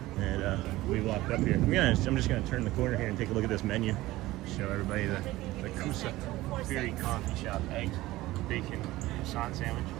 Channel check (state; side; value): quieter; left; 17.6 dB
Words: And we walked up here. I'm just going to turn the corner here and take a look at this menu. Show everybody the Safari Coffee Shop. Eggs, bacon, croissant sandwich,